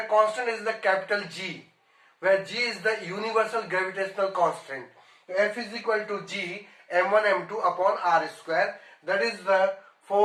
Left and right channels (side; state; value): both; identical; correlation 1.00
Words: constant is the capital G, where G is the universal gravitational constant. So F is equal to G m1 m2 upon r square. That is the